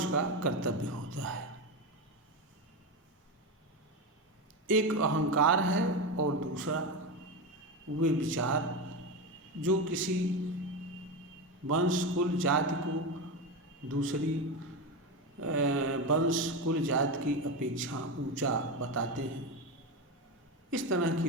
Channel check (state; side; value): normal; both; correlation 0.17